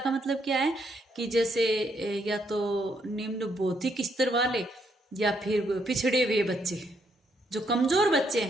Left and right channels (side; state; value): both; normal; correlation 0.74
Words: मतलब क्या है कि जैसे या तो निम्न बौद्धिक स्तर वाले या फिर पिछड़े हुए बच्चे, जो कमजोर बच्चे